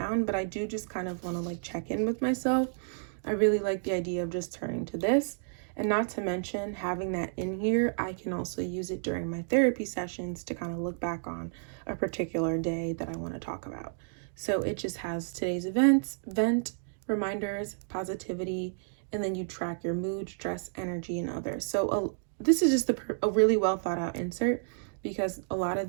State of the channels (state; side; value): silent; left; digital silence